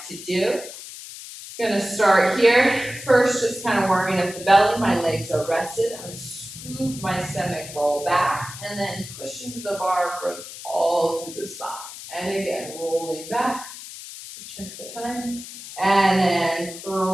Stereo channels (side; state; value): left; noise; hiss, 13 dB below the sound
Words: to do. I'm going to start here. First, just kind of warming up the belly. My legs are rested. I'm going to scoop my stomach, roll back, and then push into the bar, growth all through the spine. And again, rolling back. Check the time. And then